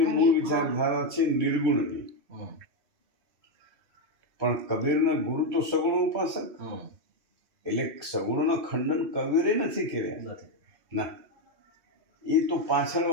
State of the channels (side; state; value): left; late; 2.6 ms